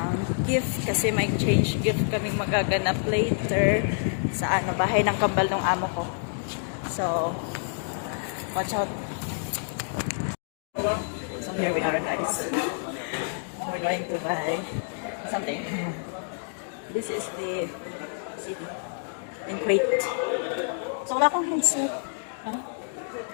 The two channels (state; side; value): silent; right; digital silence